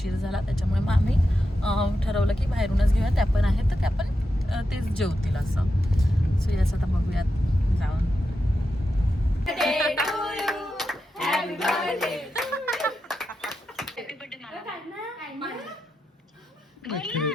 झाला. त्याच्यामुळे मग आम्ही ठरवलं की बाहेरूनच घेऊया. त्या पण आहेत तर त्या पण तेच जेवतील असं. सो येस, आता बघूयात जाऊन.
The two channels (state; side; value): normal; both; correlation 0.88